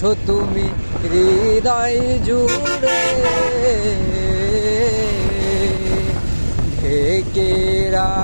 তুমি হৃদয় জুড়ে। ঢেকে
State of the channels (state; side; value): inverted; both; correlation -1.00